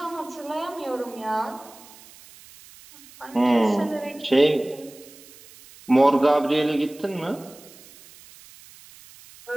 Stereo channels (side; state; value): right; noise; hiss, 22 dB below the sound